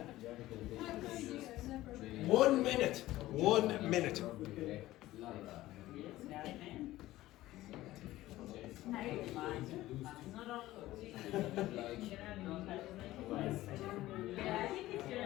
1 minute. 1 minute.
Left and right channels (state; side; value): quieter; right; 16.2 dB